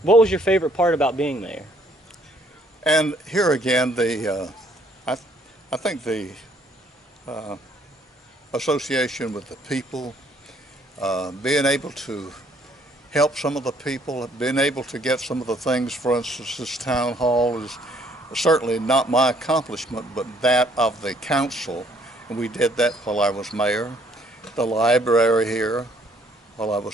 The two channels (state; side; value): normal; both; correlation 0.64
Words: what was your favorite part about being mayor? And here again, I think the association with the people, being able to help some of the people, being able to get some of the things, for instance, this town hall is certainly not my accomplishment, but that of the council, and we did that while I was mayor. The library here while I